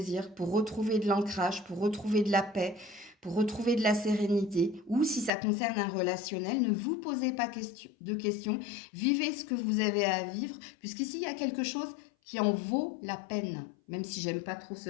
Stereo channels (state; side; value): drops out; right; at 5.3 s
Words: pour retrouver de l'ancrage, pour retrouver de la paix, pour retrouver de la sérénité. Ou si ça concerne un relationnel, ne vous posez pas de questions, vivez ce que vous avez à vivre, puisqu'ici, il y a quelque chose qui en vaut la peine, même si j'aime pas trop ce